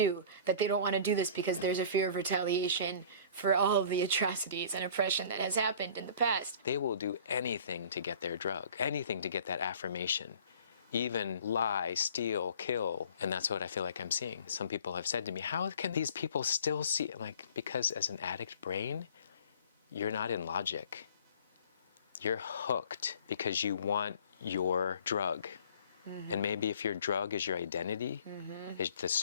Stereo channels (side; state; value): both; inverted; correlation -0.48